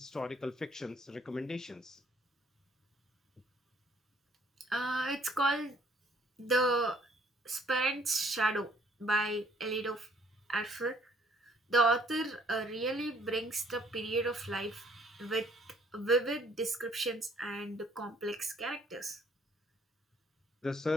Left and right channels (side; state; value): both; normal; correlation 0.62